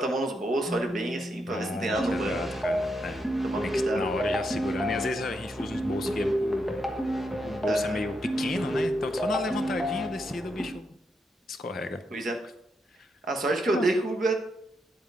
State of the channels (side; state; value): both; normal; correlation 0.81